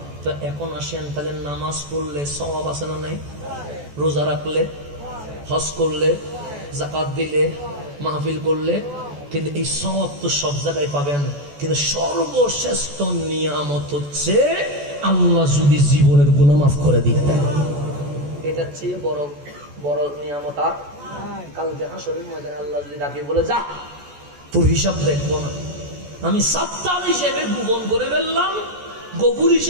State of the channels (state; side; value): late; left; 14 ms